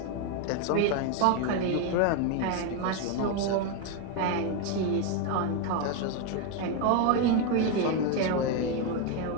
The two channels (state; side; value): different; both; correlation 0.01